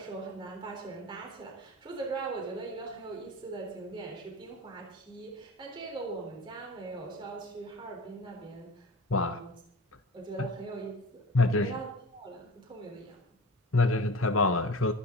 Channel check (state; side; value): normal; both; correlation 0.36